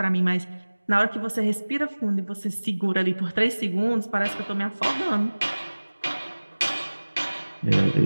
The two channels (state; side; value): inverted; both; correlation -1.00